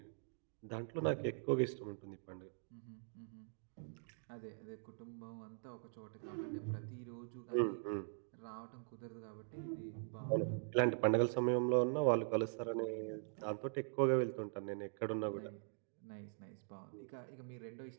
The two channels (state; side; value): silent; left; digital silence